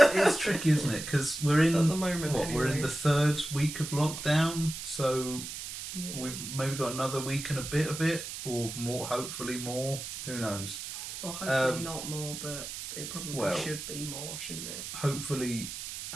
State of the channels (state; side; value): noise; right; hiss, 8 dB below the sound